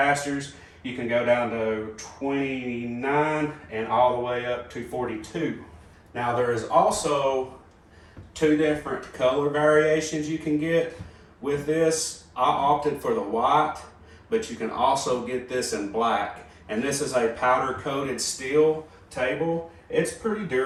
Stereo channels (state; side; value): identical; both; correlation 1.00